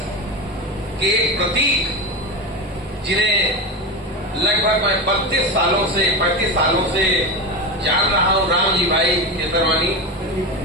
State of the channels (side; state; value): both; normal; correlation 0.20